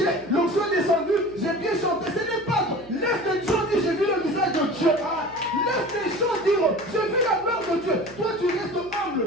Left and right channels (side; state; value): right; noise; hum, 24 dB below the sound